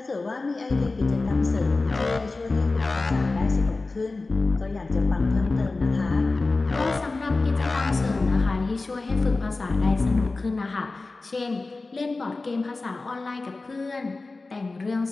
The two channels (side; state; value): right; quieter; 3.5 dB